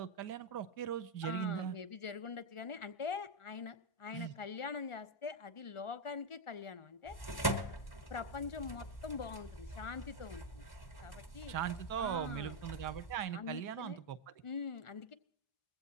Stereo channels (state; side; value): late; right; 1.1 ms